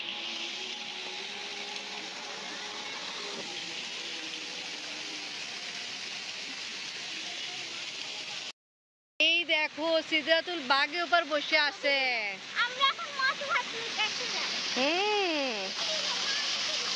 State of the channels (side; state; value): both; identical; correlation 1.00